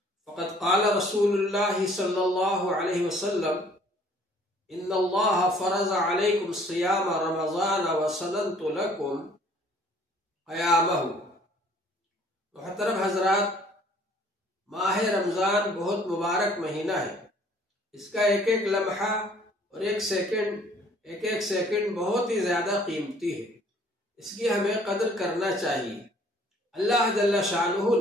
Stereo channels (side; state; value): both; normal; correlation 0.57